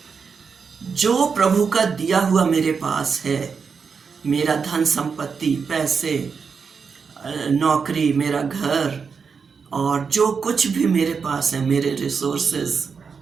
जो प्रभु का दिया हुआ मेरे पास है, मेरा धन संपत्ति, पैसे, नौकरी, मेरा घर, और जो कुछ भी मेरे पास है, मेरे रिसोर्सेज,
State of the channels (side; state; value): left; quieter; 5.7 dB